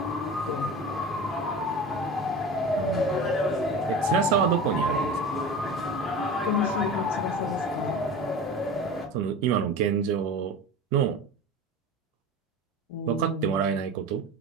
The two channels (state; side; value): normal; both; correlation 0.32